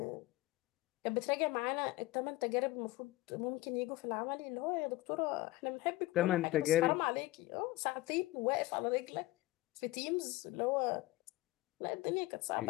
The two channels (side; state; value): right; quieter; 18.6 dB